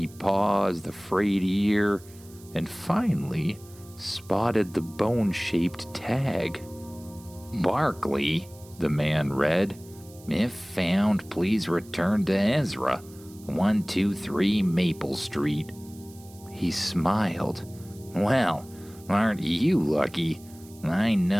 paws, the frayed ear, and finally spotted the bone-shaped tag. "Barkley," the man read. "If found, please return to Ezra, 123 Maple Street." He smiled. "Well, aren't you lucky? I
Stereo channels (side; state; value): right; noise; hiss, 23 dB below the sound